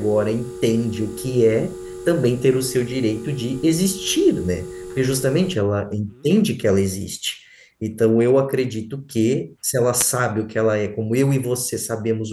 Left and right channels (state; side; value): identical; both; correlation 1.00